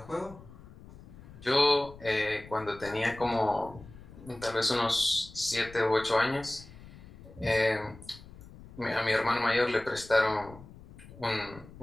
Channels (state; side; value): noise; left; rumble, 19 dB below the sound